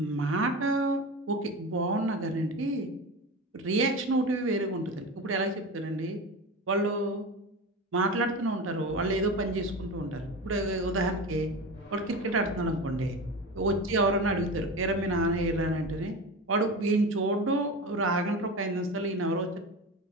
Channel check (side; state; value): both; normal; correlation 0.27